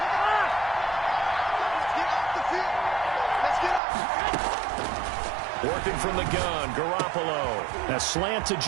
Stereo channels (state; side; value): drops out; left; at 3.8 s